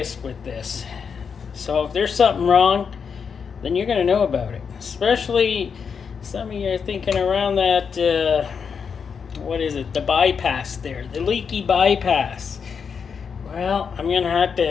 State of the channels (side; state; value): right; quieter; 6.3 dB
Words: with this. So if there's something wrong, then you're going to know about it. Especially some of you are thinking around that, what is it, the bypass there, the leaky bypass. Well, I'm going to have